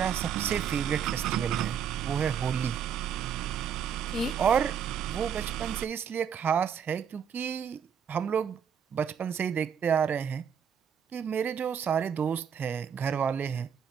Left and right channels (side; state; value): left; quieter; 7.7 dB